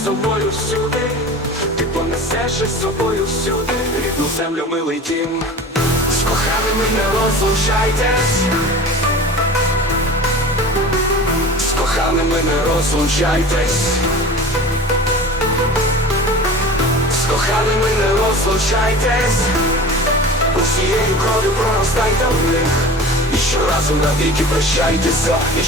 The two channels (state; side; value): normal; both; correlation 0.37